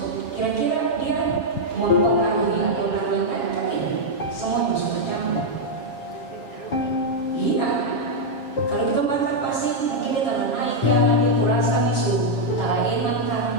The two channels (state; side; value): late; right; 7.2 ms